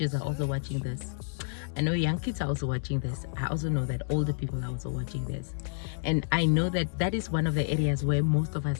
are also watching this, I know young kids are also watching this, I also know that older people are also watching this, and I know that that is one of the areas where most of us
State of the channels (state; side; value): silent; right; 58 dB below the other